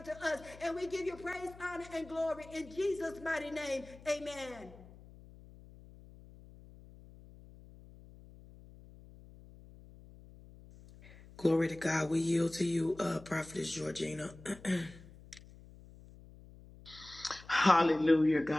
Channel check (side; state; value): left; noise; hum, 20 dB below the sound